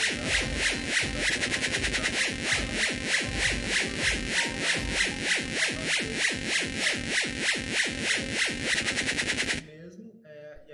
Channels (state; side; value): identical; both; correlation 1.00